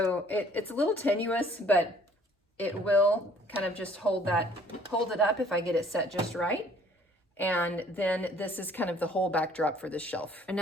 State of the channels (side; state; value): both; normal; correlation 0.58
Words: it's a little tenuous, but it will kind of just hold it up if I get it set just right. And then this is kind of the whole backdrop for this shelf.